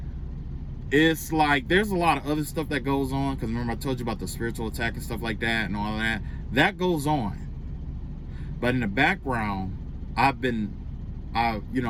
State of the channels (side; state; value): both; identical; correlation 1.00